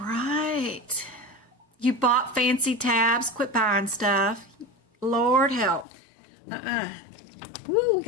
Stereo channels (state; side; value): drops out; right; at 5.9 s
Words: You bought fancy tabs. Quit buying stuff. Lord help. Ooh, we